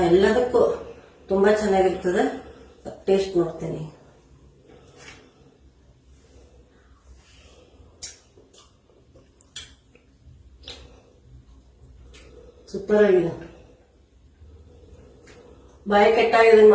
ಎಲ್ಲದಕ್ಕೂ ತುಂಬಾ ಚೆನ್ನಾಗಿರ್ತದೆ. ಟೇಸ್ಟ್ ನೋಡ್ತೀನಿ. ಸೂಪರ್ ಆಗಿದೆ. ಬಾಯಿ ಕೆಟ್ಟಾಗಿ ಇದನ್ನ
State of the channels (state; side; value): identical; both; correlation 1.00